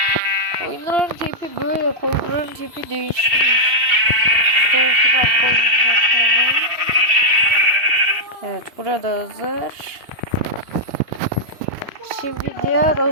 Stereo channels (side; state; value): left; late; 2.7 ms